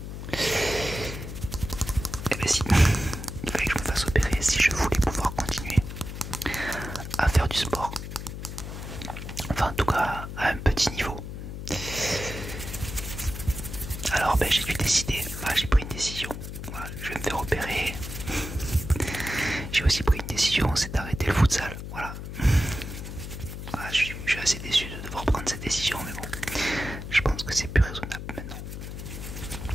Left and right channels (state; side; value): noise; left; hum, 8 dB below the sound